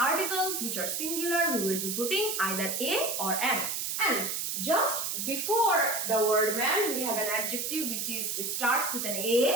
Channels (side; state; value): right; noise; hiss, 2 dB below the sound